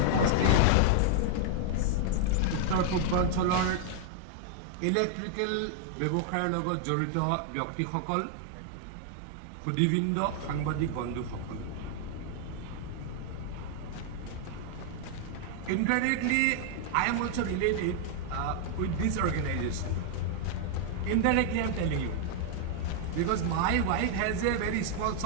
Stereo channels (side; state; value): both; different; correlation 0.00